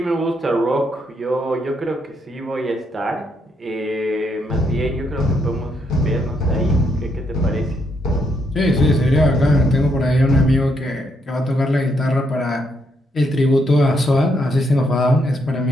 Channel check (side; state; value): both; normal; correlation 0.76